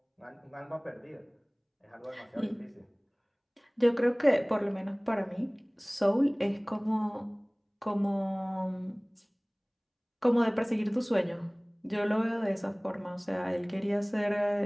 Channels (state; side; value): identical; both; correlation 1.00